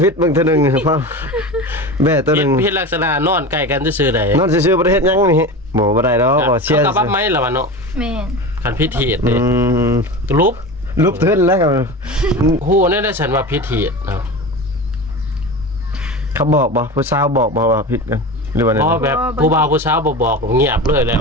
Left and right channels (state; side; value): normal; both; correlation 0.29